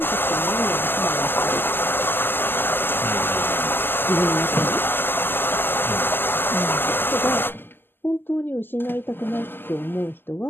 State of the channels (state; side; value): late; right; 0.097 ms